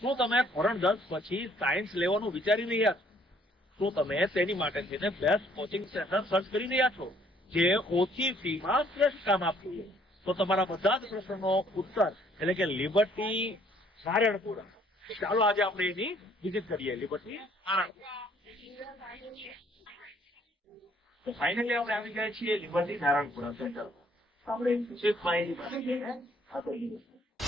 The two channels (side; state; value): both; normal; correlation 0.62